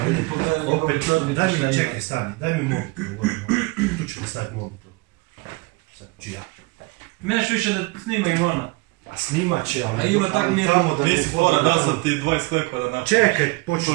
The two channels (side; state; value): left; quieter; 25.3 dB